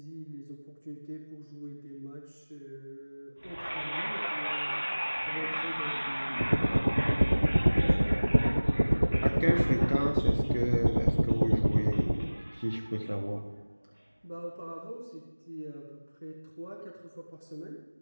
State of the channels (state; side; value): inverted; both; correlation -1.00